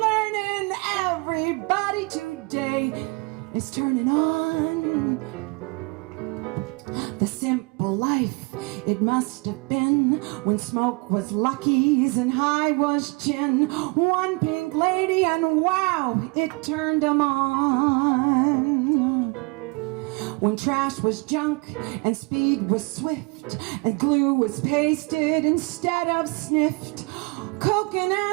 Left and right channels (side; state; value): left; quieter; 29.0 dB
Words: Everybody today is turning on. The simple life it must have been when smoke was Lucky's and high was gin. One pink lady and wow, it turned 'em on. When trash was junk and speed was swift and glue was pasted instead of sniffed. Coke and